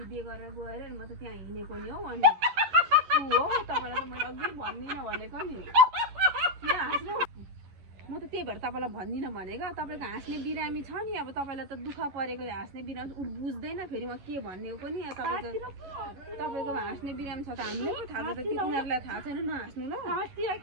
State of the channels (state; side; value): late; left; 11 ms